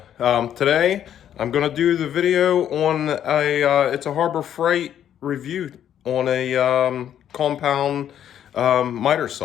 Today I'm gonna do the video on it's a Harbor Freight review on a compound miter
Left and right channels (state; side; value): quieter; right; 10.1 dB